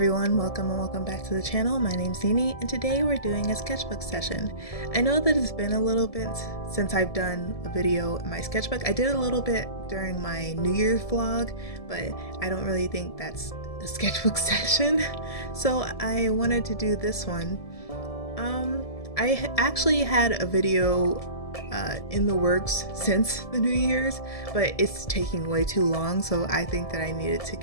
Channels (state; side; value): late; right; 1.7 ms